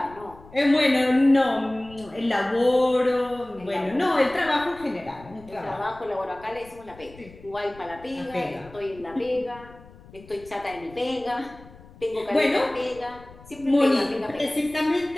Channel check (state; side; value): noise; left; rumble, 21 dB below the sound